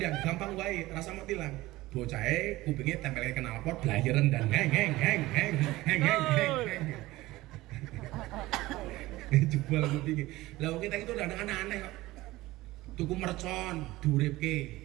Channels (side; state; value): left; quieter; 18.3 dB